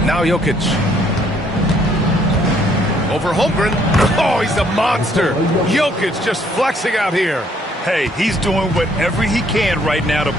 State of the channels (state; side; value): normal; both; correlation 0.66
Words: Now Jokic. Over Holmgren. Oh, he's a monster. Jokic just flexing out here. Hey, he's doing whatever he can right now to